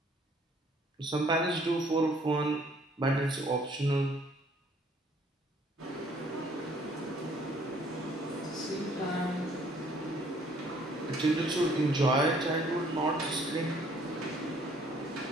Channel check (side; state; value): both; normal; correlation 0.61